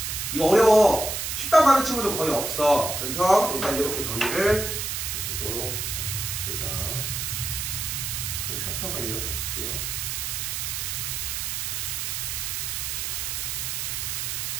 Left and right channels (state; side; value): noise; right; hiss, 2 dB below the sound